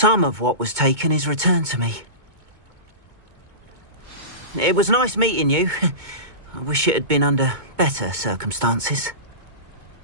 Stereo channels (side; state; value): left; late; 2.2 ms